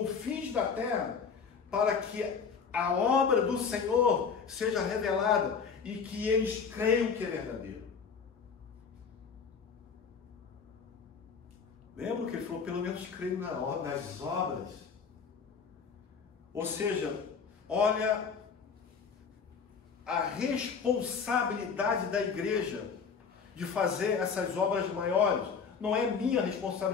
da terra, para que a obra do Senhor seja revelada e que eles creiam que é verdadeiro. Lembra que ele falou, pelo menos creio nas obras? Ou seja, olha a responsabilidade da igreja de fazer essas obras maiores. Não é minha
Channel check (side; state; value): right; quieter; 5.9 dB